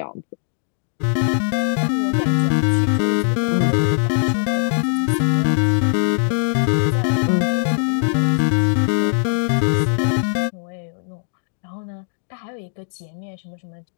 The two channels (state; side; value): silent; right; digital silence